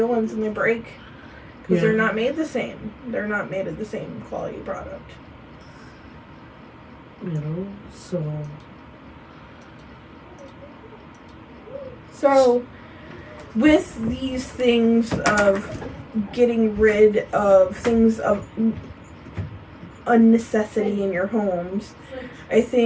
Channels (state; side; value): identical; both; correlation 1.00